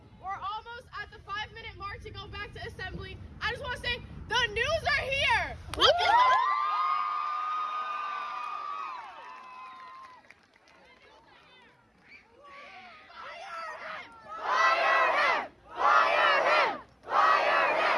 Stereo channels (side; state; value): both; identical; correlation 1.00